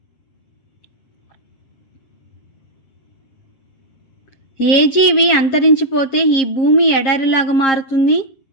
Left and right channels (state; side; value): late; right; 7.5 ms